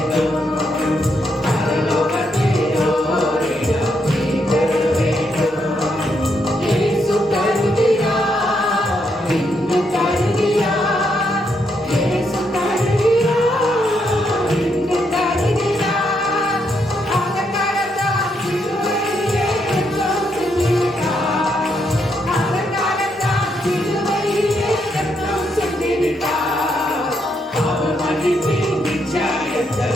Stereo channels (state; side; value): normal; both; correlation 0.78